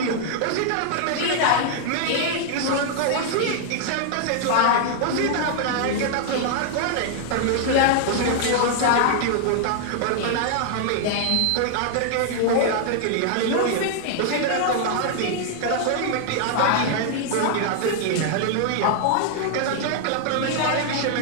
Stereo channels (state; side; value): different; both; correlation 0.00